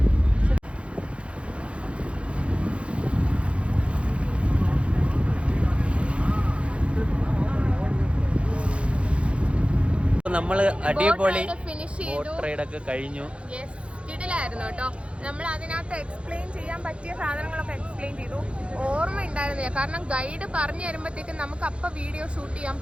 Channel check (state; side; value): late; left; 0.060 ms